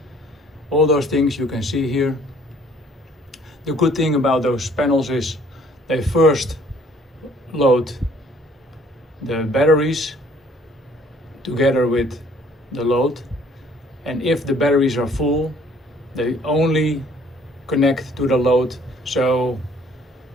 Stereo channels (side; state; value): both; normal; correlation 0.58